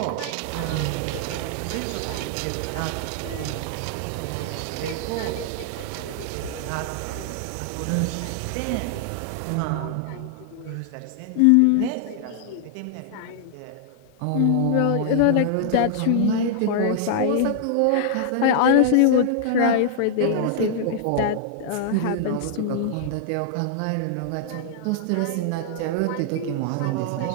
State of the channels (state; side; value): different; both; correlation -0.01